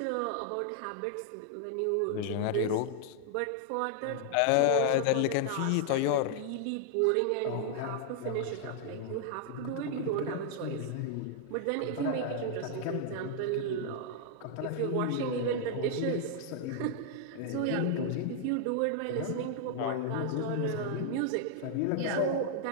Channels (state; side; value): different; both; correlation -0.01